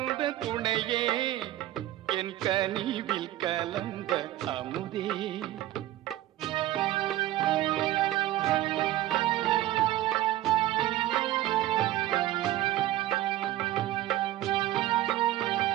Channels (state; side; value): quieter; left; 14.3 dB